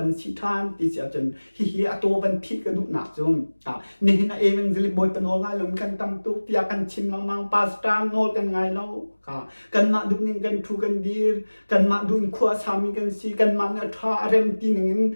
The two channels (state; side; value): inverted; both; correlation -1.00